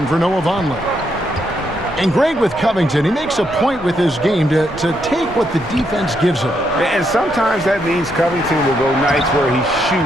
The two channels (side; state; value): both; normal; correlation 0.78